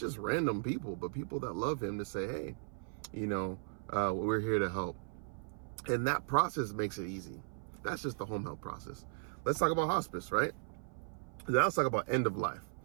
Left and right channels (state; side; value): silent; left; 53 dB below the other